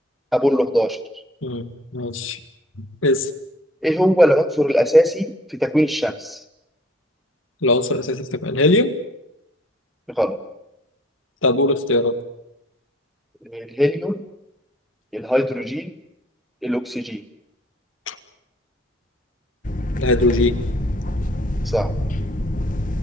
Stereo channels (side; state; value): both; normal; correlation 0.57